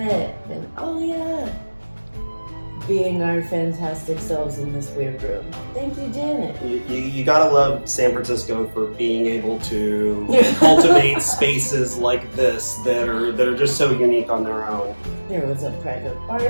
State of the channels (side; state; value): both; inverted; correlation -1.00